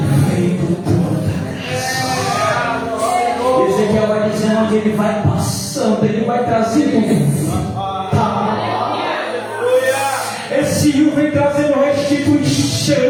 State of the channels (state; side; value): identical; both; correlation 1.00